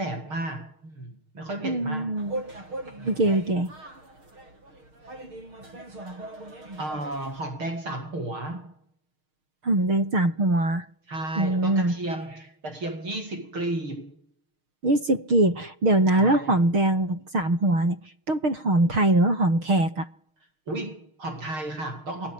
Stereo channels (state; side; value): late; left; 6.5 ms